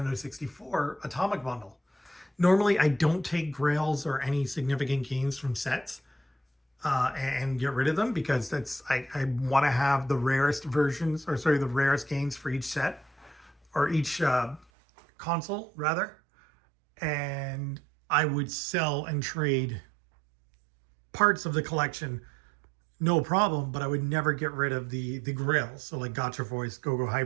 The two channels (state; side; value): drops out; left; at 14.7 s